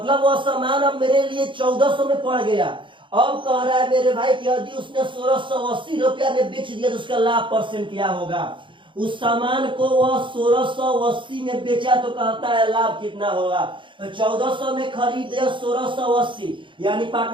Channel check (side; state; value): left; late; 0.24 ms